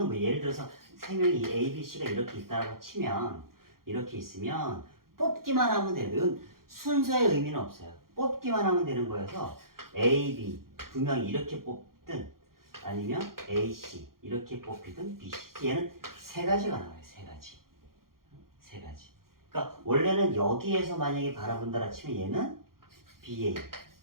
뭐 예를 들어서 3명이 A, B, C가 이렇게 있다고 치면 이렇게 있으면 뽑기만 하면 돼요. 이건 순서의 의미는 없어요. 뽑기만 하면 되는 거여서 A, B 2명이 이렇게 뽑든 아니면 A, C 이렇게 뽑히든 B, C 얘는 3가지가 나와요. 3가지. 3가지. 그러니까 원래는 여기에서 만약에 바라본다라 치면 얘는 BA,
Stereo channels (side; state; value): left; late; 0.92 ms